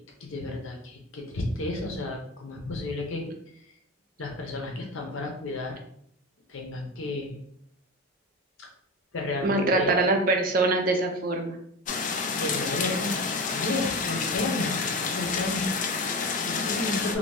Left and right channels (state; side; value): normal; both; correlation 0.25